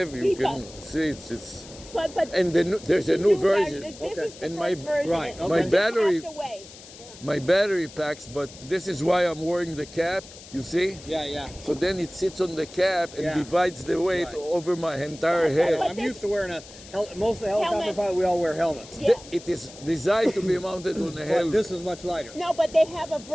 You Keep can up. see it's But and there's a new version. This Okay. is the And first version. right, You okay. just battery- have to wait. My battery packs, but this is why I'm wearing the cap. You see? Yeah. So then it sits on the cap and Yeah. divides the weight Right. over my entire But head. I'm used to wearing most of the helicopter Helmet. pilots, we all wear helmets. Yeah. It is designed to be mounted on a But helmet. this is much lighter. No, but they have a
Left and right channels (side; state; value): left; noise; hiss, 18 dB below the sound